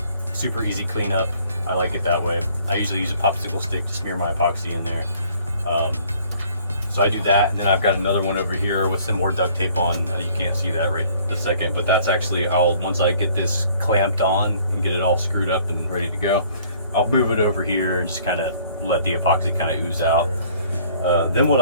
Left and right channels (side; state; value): both; inverted; correlation -0.57